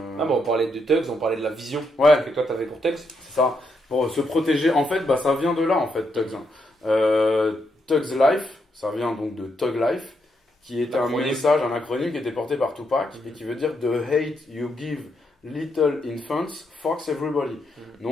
Ah bon, on parlait de Tugs, on parlait de la vision Ouais, que toi tu avais pour Tugs. c'est ça. Pour se protéger, en fait, bah, ça vient de là, en fait, Tugs. Tugs Life, ça vient donc de Tug Life, qui est un L'acronyme. message, un acronyme qui était porté par Tupac et Mhm. qui veut dire The hate you give little infants fucks everybody. Mhm.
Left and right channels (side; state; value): both; normal; correlation 0.79